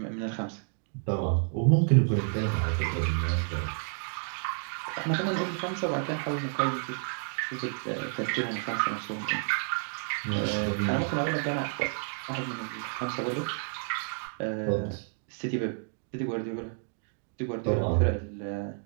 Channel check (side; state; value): left; silent; 58 dB below the other